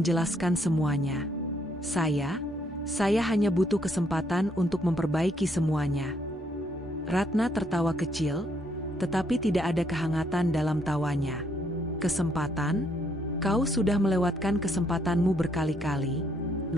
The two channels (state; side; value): normal; both; correlation 0.71